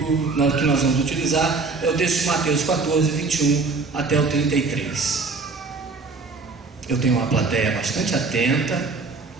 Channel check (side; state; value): left; quieter; 4.1 dB